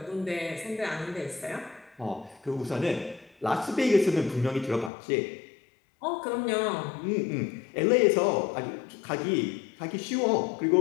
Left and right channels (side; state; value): right; drops out; at 4.9 s